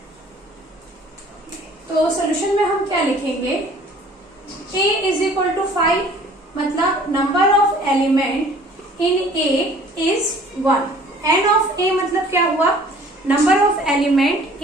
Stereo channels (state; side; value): normal; both; correlation 0.52